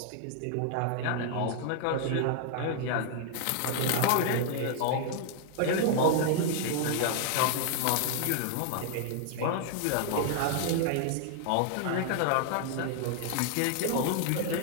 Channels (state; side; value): different; both; correlation 0.00